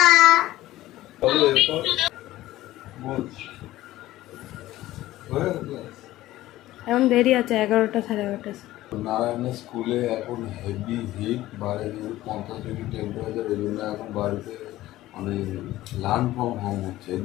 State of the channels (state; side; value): quieter; right; 15.8 dB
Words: এখন দেরি আছে, 11টা 11:30। নারায়ণের স্কুলে এখন হেভি হিট, বাইরে 50 ডিগ্রি টেম্পারেচার। এই জন্য এখন বাড়িতে মানে লার্ন ফ্রম হোম হচ্ছে,